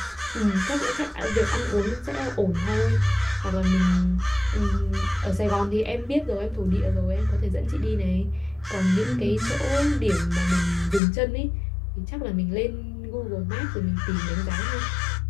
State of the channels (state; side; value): drops out; right; at 11.0 s